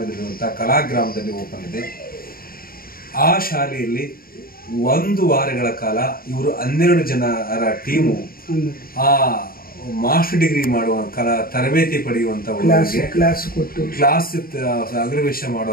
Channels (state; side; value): late; right; 0.43 ms